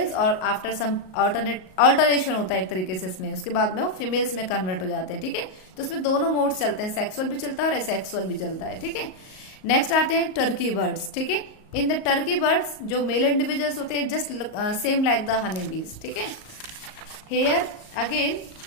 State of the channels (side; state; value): right; late; 38 ms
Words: और आफ्टर सम अल्टरेशन होता है एक तरीके से इसमें, उसके बाद में वो फीमेल्स में कन्वर्ट हो जाते हैं. ठीक है. तो इसमें दोनों मोड्स चलते हैं, सेक्सुअल भी चलता है और एसेक्सुअल भी चलता है. ठीक है. नेक्स्ट आते हैं टर्की बर्ड्स. ठीक है. इन द टर्की बर्ड्स जो मेल इंडिविजुअल्स होते हैं just same like the honey bees. ठीक है. Here again